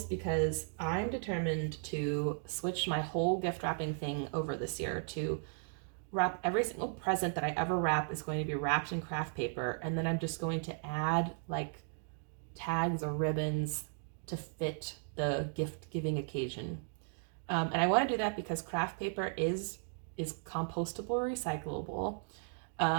because I'm determined to switch my whole gift wrapping thing over this year to wrap every single present that I ever wrap is going to be wrapped in craft paper, and then I'm just going to add like tags or ribbons to fit the gift giving occasion. And I want to do that because craft paper is compostable or recyclable.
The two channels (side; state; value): left; silent; 54 dB below the other